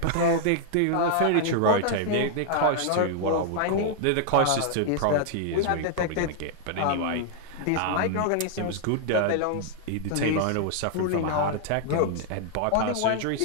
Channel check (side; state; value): both; different; correlation 0.00